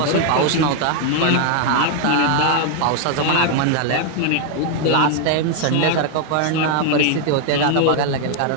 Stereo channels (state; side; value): different; both; correlation 0.00